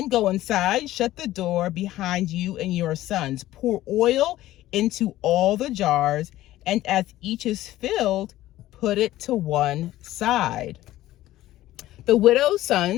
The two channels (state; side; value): quieter; right; 15.1 dB